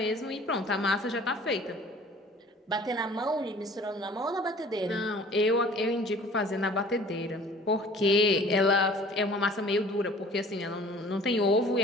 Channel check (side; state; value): both; normal; correlation 0.48